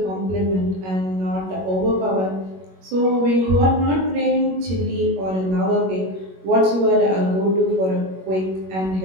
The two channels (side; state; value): left; late; 21 ms